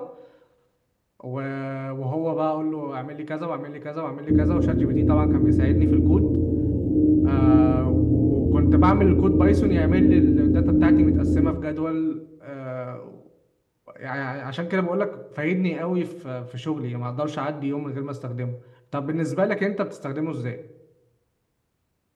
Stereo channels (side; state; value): both; identical; correlation 1.00